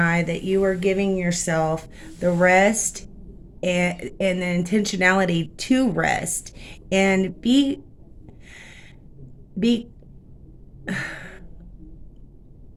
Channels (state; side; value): identical; both; correlation 1.00